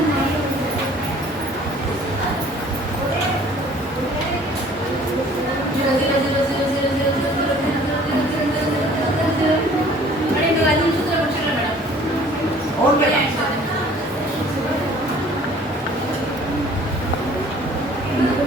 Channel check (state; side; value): normal; both; correlation 0.52